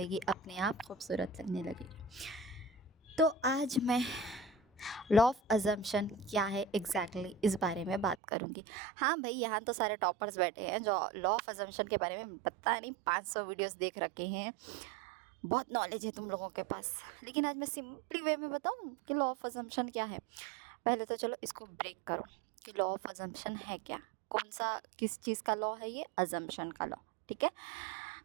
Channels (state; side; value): drops out; left; at 8.2 s